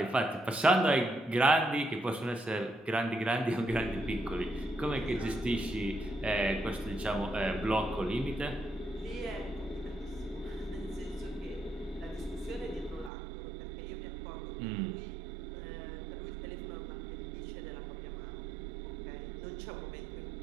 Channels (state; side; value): drops out; left; at 13.1 s